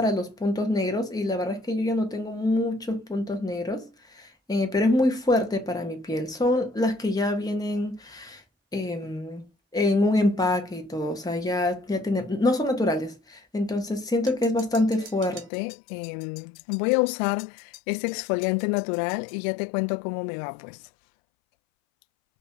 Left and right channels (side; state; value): right; drops out; at 15.5 s